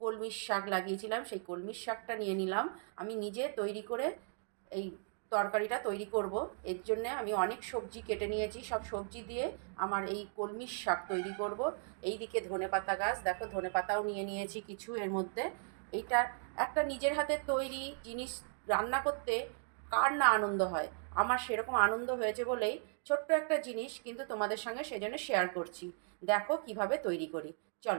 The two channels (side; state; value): left; silent; 53 dB below the other